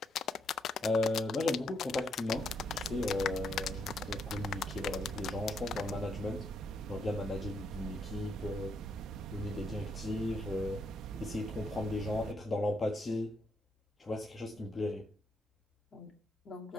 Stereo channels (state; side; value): normal; both; correlation 0.76